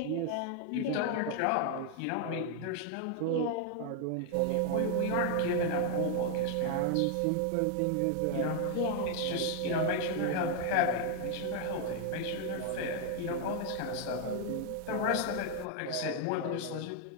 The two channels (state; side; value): different; both; correlation 0.00